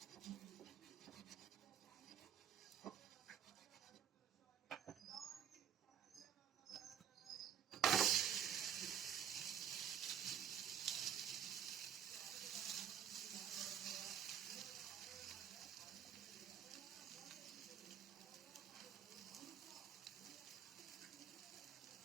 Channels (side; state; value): left; quieter; 9.1 dB